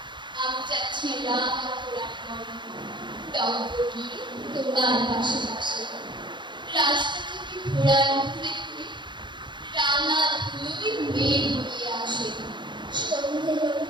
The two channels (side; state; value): left; late; 0.23 ms